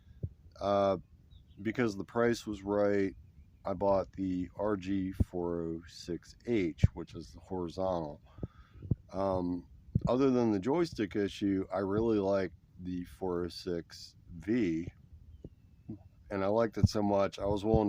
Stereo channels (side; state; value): both; identical; correlation 1.00